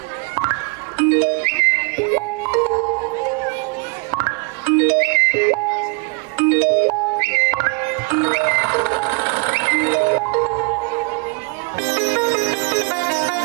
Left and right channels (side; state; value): left; quieter; 32.7 dB